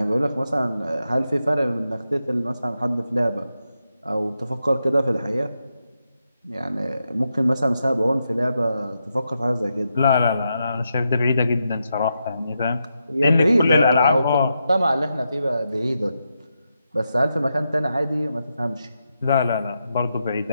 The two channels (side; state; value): both; inverted; correlation -0.85